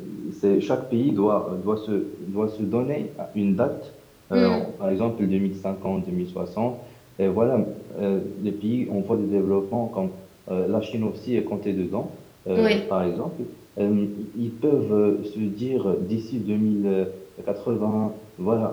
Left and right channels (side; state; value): both; identical; correlation 1.00